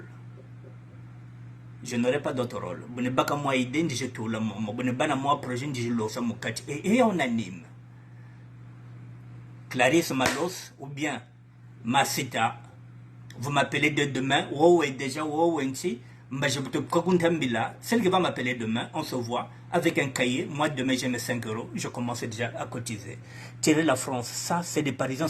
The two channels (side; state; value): both; identical; correlation 1.00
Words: Je n'aurai pas d'autre rôle. Et on anime. Clarisse Malos ou bien Masita, vous m'appelez de demain, celle qui va m'appeler demain, on se voit avec un cahier. Moi, demain, j'ai mes 5 euros. Je commence déjà à cotiser. Tirer la France, ça, c'est des Parisiens